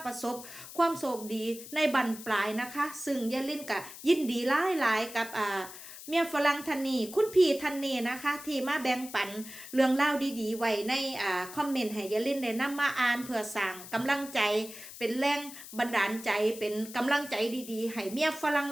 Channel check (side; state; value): left; noise; hiss, 14 dB below the sound